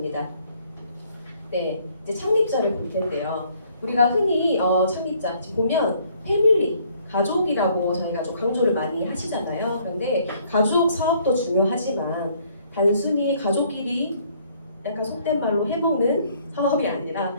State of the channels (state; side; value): inverted; both; correlation -0.63